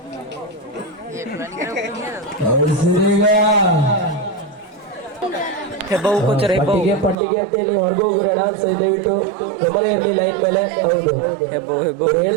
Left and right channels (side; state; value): left; drops out; at 7.2 s